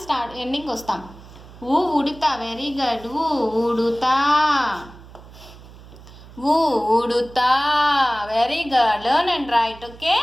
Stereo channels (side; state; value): right; noise; hum, 19 dB below the sound